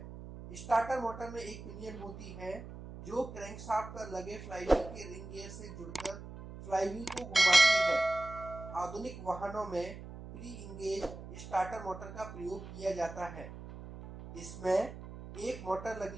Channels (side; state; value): right; noise; hum, 12 dB below the sound